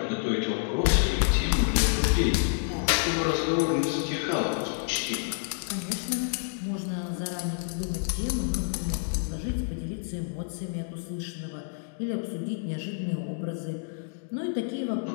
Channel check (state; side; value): silent; right; digital silence